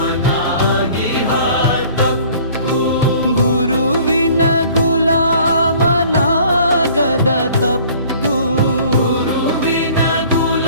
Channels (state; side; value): inverted; both; correlation -0.52